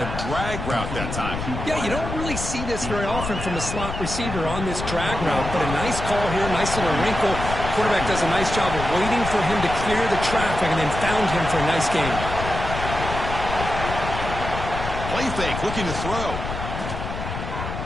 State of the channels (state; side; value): noise; left; rumble, 6 dB below the sound